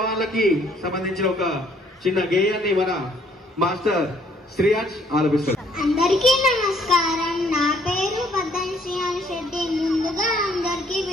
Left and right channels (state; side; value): normal; both; correlation 0.63